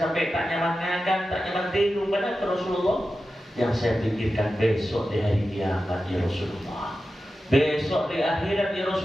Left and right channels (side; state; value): both; normal; correlation 0.92